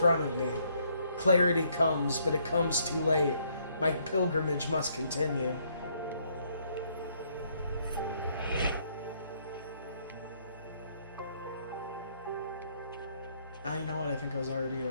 of me. Clarity comes, but it comes too late. My pilgrimage must continue. Ah, you know what? I think I was already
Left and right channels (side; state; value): both; inverted; correlation -0.69